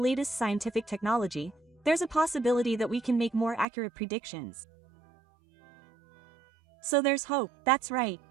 scientific technology, there's a possibility that we can make more accurate predictions. So there's hope. That's right.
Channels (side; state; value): left; drops out; at 3.7 s